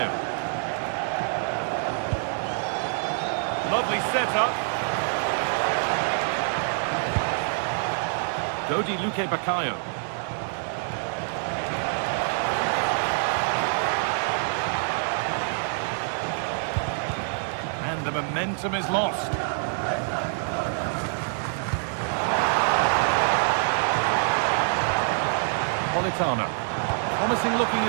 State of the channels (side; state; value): left; silent; digital silence